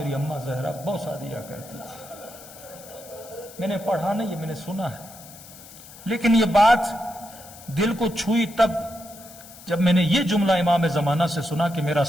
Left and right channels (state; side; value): noise; left; hiss, 18 dB below the sound